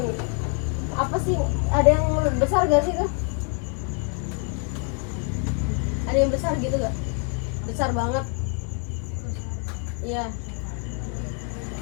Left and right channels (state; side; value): quieter; right; 39.2 dB